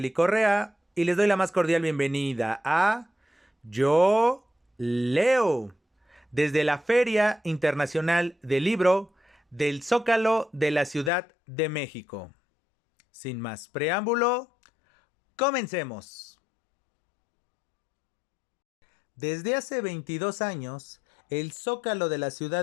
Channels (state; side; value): drops out; right; at 11.1 s